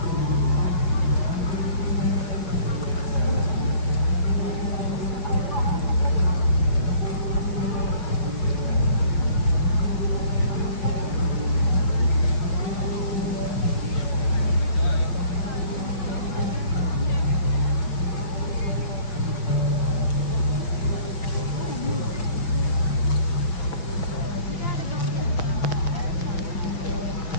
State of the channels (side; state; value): right; late; 6.1 ms